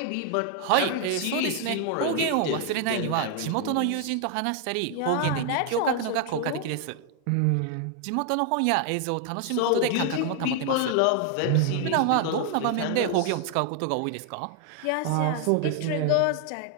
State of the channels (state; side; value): different; both; correlation 0.00